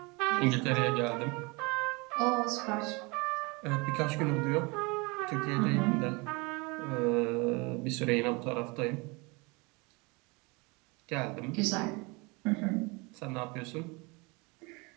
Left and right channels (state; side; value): quieter; left; 27.4 dB